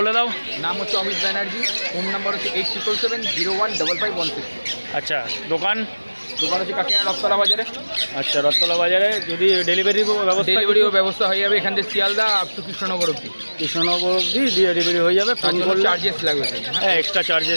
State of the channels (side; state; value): both; inverted; correlation -1.00